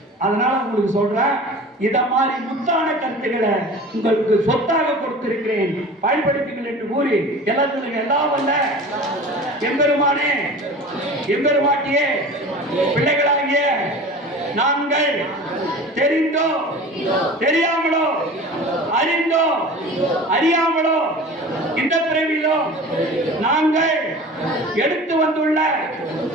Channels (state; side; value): normal; both; correlation 0.38